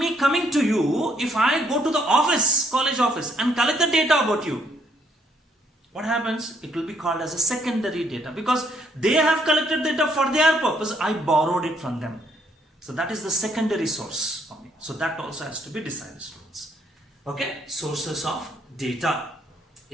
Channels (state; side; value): normal; both; correlation 0.70